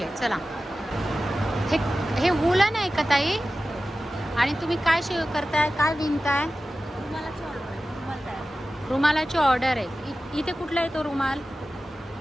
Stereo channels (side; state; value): both; normal; correlation 0.94